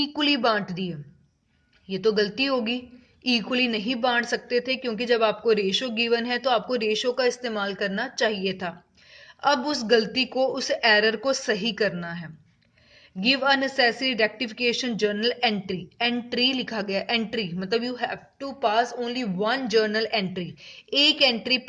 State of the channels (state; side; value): identical; both; correlation 1.00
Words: बांट दिए. ये तो गलती होगी, इक्वली नहीं बांट सकते थे, क्योंकि जब आपको रेशो गिवन है तो आपको रेशो का इस्तेमाल करना चाहिए था. अब उस गलती को, उस एरर को सही करना है. Give a necessary rectification journal entry. Entry लिखा गया, एंट्री मतलब you have to pass only one journal entry, एक एंट्री